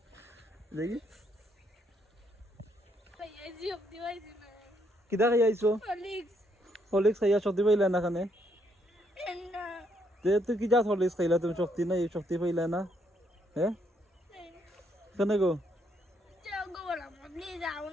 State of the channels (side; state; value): both; normal; correlation 0.73